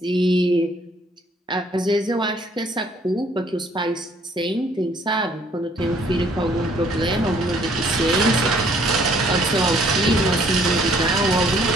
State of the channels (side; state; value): both; normal; correlation 0.62